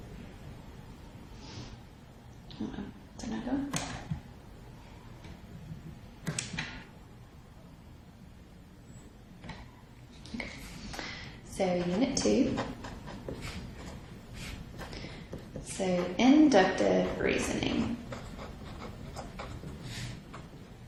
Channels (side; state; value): both; identical; correlation 1.00